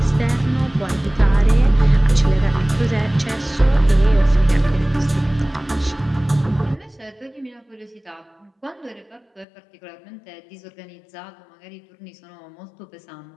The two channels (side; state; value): right; drops out; at 9.5 s